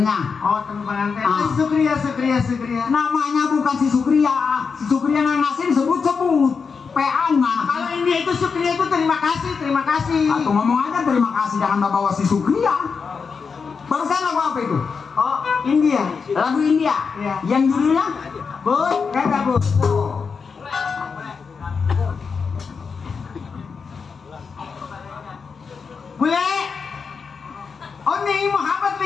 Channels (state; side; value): quieter; right; 5.5 dB